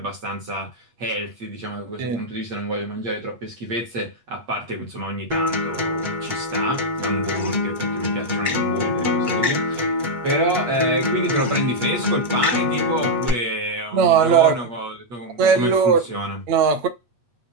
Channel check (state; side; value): late; left; 8.4 ms